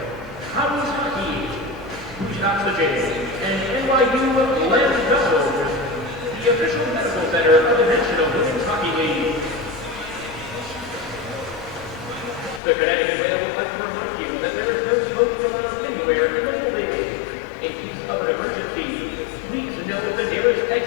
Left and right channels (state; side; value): drops out; right; at 12.6 s